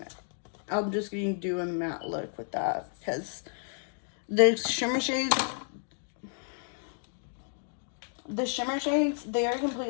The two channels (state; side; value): silent; right; 57 dB below the other